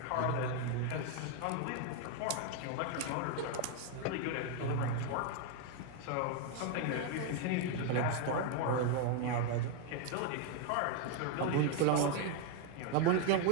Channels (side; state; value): both; different; correlation 0.00